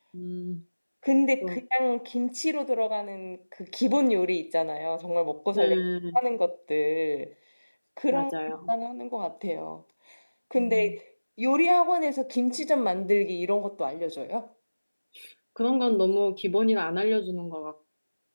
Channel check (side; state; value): both; inverted; correlation -1.00